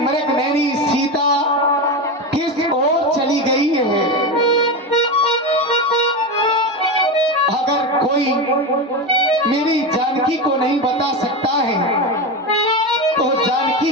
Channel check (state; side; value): normal; both; correlation 0.17